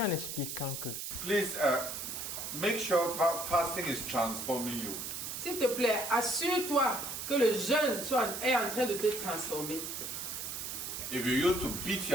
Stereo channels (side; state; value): right; noise; hiss, 5 dB below the sound